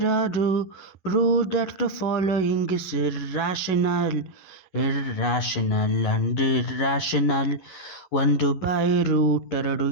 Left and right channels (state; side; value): late; right; 11 ms